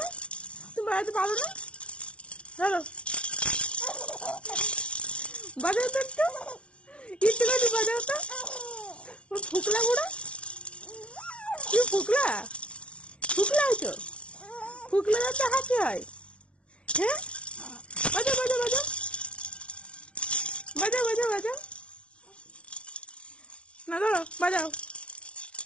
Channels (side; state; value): right; late; 0.060 ms